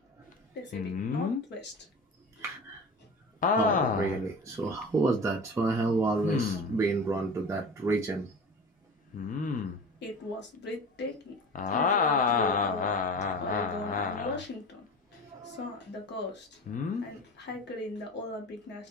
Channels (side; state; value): both; normal; correlation 0.35